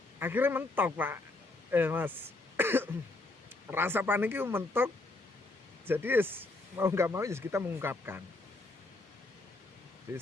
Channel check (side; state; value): right; quieter; 3.1 dB